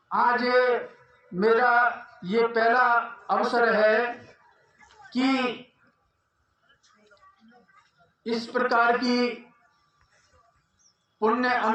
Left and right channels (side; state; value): both; identical; correlation 1.00